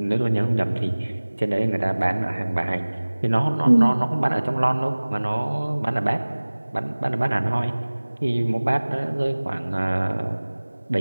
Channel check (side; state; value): both; inverted; correlation -1.00